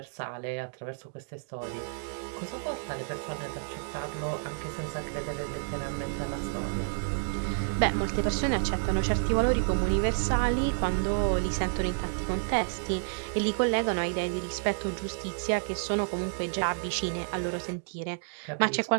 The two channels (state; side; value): silent; left; digital silence